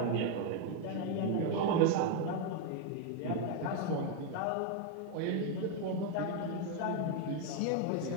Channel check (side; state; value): both; different; correlation 0.01